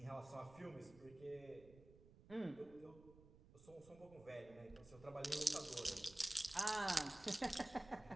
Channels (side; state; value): right; noise; rumble, 21 dB below the sound